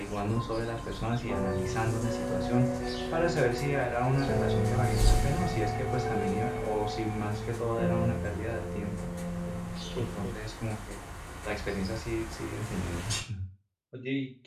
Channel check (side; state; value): both; identical; correlation 1.00